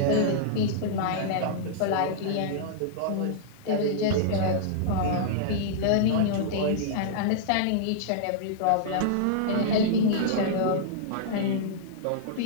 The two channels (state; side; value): different; both; correlation -0.02